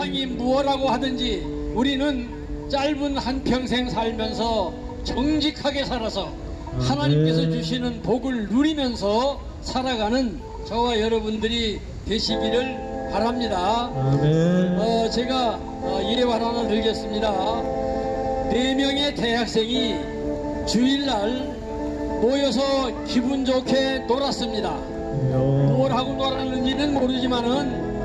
무엇라고 하든지 우리는 짧은 한평생 살면서 정직하게 살아서 하나님께서 주시는 복을 누리면서 살아가는 저와 여러분들이 되시기를 바랍니다. 아멘. 제가 예화 하나 들겠습니다. 4명의 대학생이 주일날 모여서 기분 좋게 놀았습니다. 뭘 하고 놀았는지는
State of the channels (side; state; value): both; identical; correlation 1.00